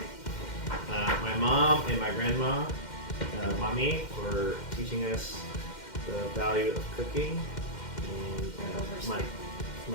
My mom and my grandma, mommy, for teaching us the value of cooking. And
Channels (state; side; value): late; right; 2.1 ms